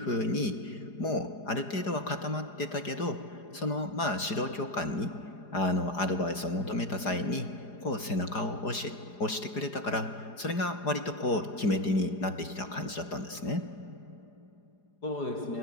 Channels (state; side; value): late; right; 4.9 ms